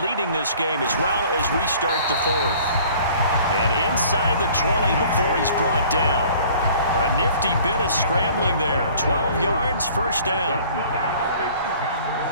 this game as well as we start the 4th. And inside the 20 before he's brought down. A nifty bit of scrambling there. 12 yards, first down.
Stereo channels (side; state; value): both; inverted; correlation -0.52